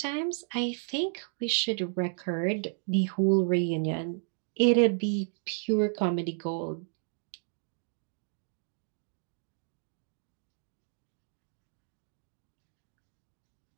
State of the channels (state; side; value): silent; left; 56 dB below the other